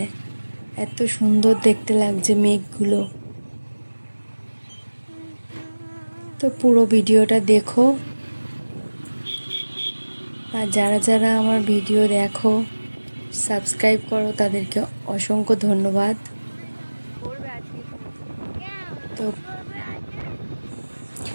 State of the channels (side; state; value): both; inverted; correlation -1.00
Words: এত সুন্দর দেখতে লাগছে মেঘগুলো। তো পুরো ভিডিওটা দেখো, আর যারা যারা আমার ভিডিও দেখো সাবস্ক্রাইব করো তাদেরকে অসংখ্য ধন্যবাদ। তো